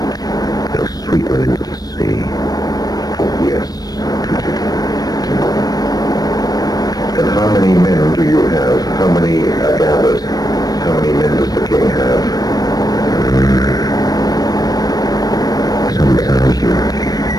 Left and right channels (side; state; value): right; late; 0.19 ms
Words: they'll sweep them into the sea. Yes. And how many men do you have? How many are gathered? How many men does the king have? Some thousands.